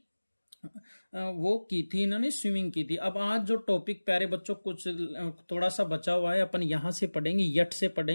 वो की थी, इन्होंने स्विमिंग की थी। अब आज जो टॉपिक प्यारे बच्चों कुछ थोड़ा सा बचा हुआ है, अपन यहां से पढ़ेंगे, यट से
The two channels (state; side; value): inverted; both; correlation -1.00